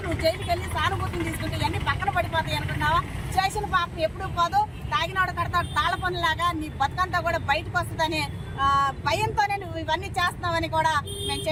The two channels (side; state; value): both; identical; correlation 1.00